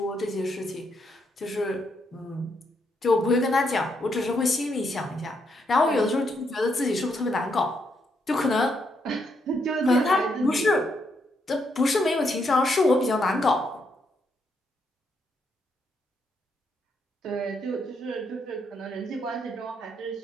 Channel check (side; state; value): both; normal; correlation 0.77